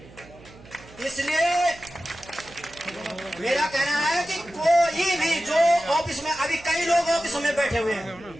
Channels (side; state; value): right; noise; hum, 21 dB below the sound